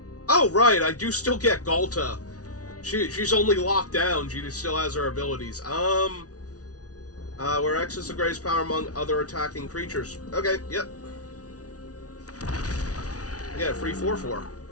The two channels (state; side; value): late; right; 0.68 ms